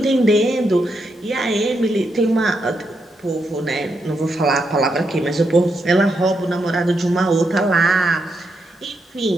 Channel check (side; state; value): both; normal; correlation 0.82